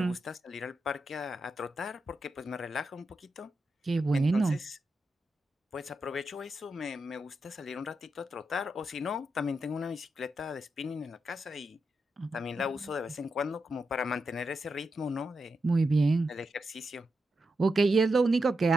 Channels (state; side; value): normal; both; correlation 0.86